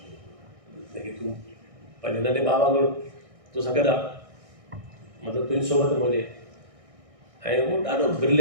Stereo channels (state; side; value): late; left; 1.6 ms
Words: जेके तूं पंहिंजे नंढे भाउ वांगुरु तोसां गॾु आहे, मतिलबु तुंहिंजी सोबत में हुजे। ऐं उहो ॾाढो